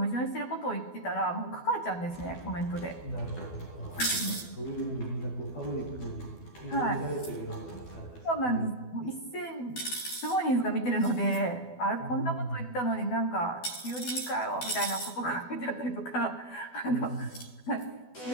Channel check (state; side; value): late; right; 12 ms